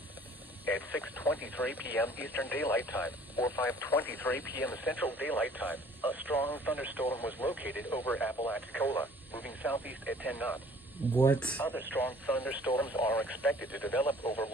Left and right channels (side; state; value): both; normal; correlation 0.53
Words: At 6:23 p.m. Eastern Daylight Time or 5:23 p.m. Central Daylight Time, a strong thunderstorm was located over Apalachicola, moving southeast at 10 knots. What? Other strong thunderstorms are expected to develop over